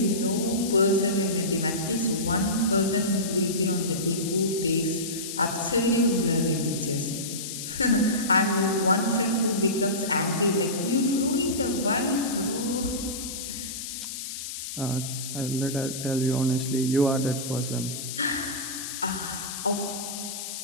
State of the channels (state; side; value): noise; left; hiss, 7 dB below the sound